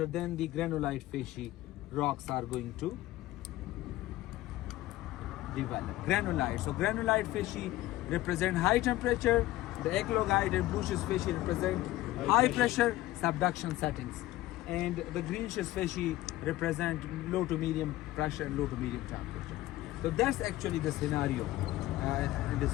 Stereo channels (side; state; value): right; quieter; 16.3 dB